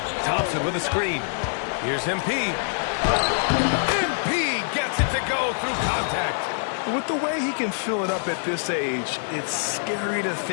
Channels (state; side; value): silent; right; digital silence